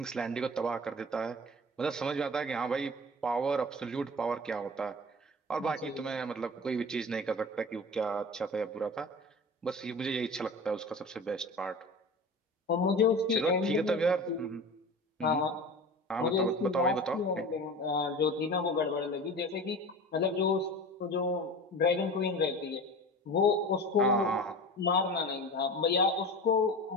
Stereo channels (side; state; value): both; normal; correlation 0.34